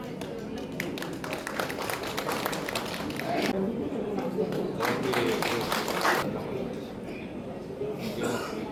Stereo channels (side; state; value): both; identical; correlation 1.00